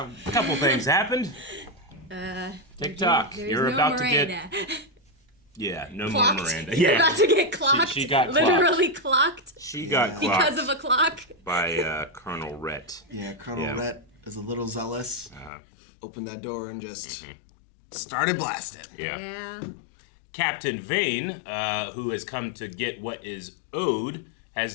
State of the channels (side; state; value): right; drops out; at 15.5 s